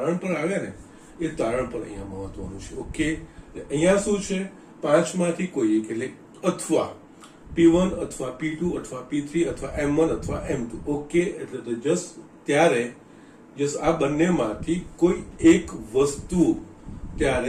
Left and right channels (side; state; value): both; identical; correlation 1.00